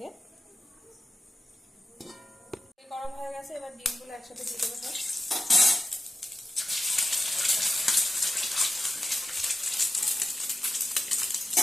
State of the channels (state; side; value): normal; both; correlation 0.91